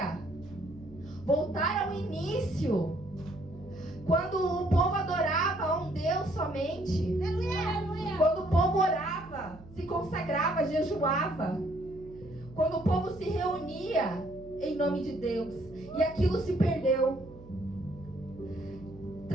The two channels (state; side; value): noise; right; hum, 19 dB below the sound